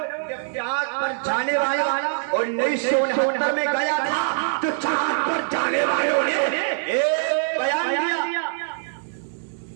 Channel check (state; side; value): silent; left; digital silence